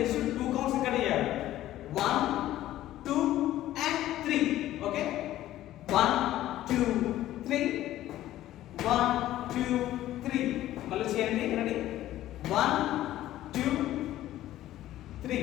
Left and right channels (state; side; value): quieter; right; 14.0 dB